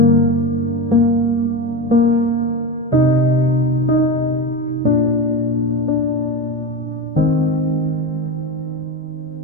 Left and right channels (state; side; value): normal; both; correlation 0.21